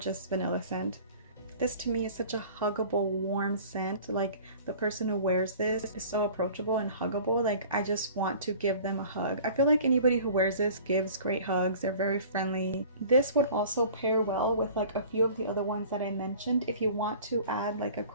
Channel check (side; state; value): both; inverted; correlation -0.46